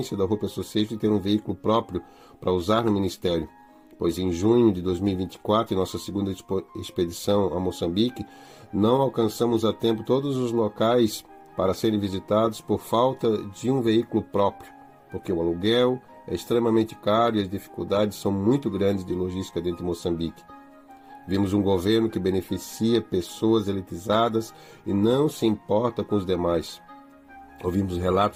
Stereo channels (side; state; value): both; identical; correlation 1.00